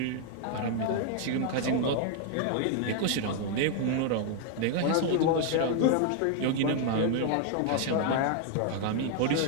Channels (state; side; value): different; both; correlation 0.00